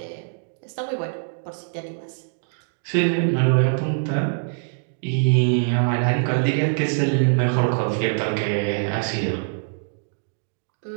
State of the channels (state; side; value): silent; left; digital silence